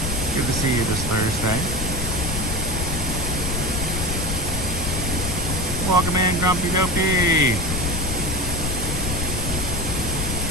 Good to see you this Thursday. Welcome in, Grumpy Dopey.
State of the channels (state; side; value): noise; left; rumble, 3 dB below the sound